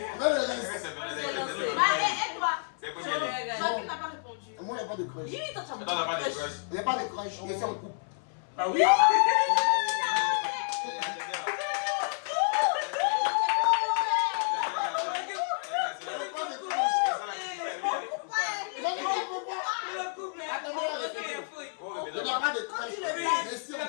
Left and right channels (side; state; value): right; silent; 58 dB below the other